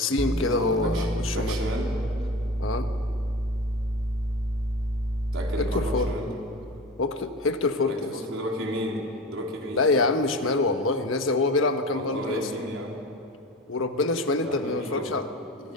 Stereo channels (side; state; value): both; normal; correlation 0.31